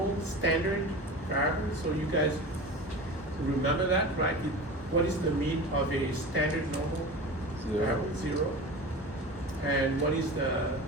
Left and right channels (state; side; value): normal; both; correlation 0.32